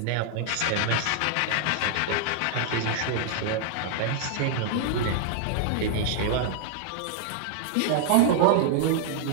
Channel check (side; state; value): both; different; correlation -0.01